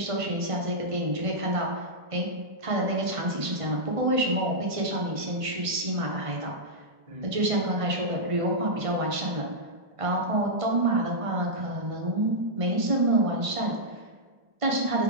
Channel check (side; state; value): left; late; 1.5 ms